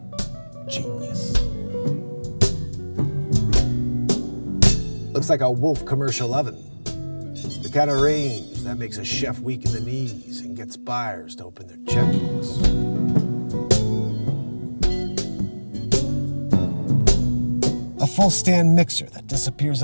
Genius. Looks like a Wolf commercial oven. The kind of range that makes a chef weak in the knees and gets buyers to open their checkbooks. A full-stand mixer that disappears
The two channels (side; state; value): both; inverted; correlation -1.00